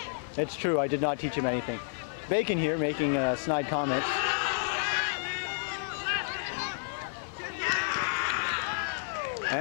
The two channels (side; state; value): right; silent; 56 dB below the other